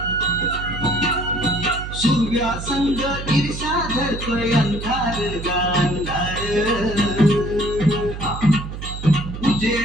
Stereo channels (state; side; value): noise; right; hum, 8 dB below the sound